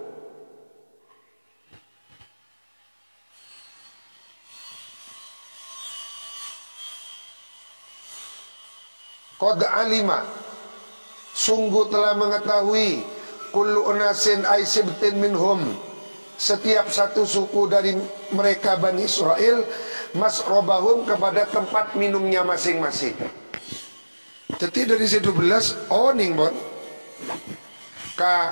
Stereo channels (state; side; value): inverted; both; correlation -1.00